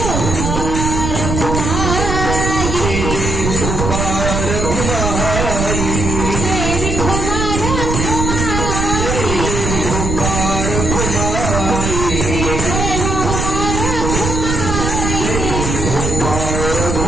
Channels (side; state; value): right; noise; rumble, 1 dB below the sound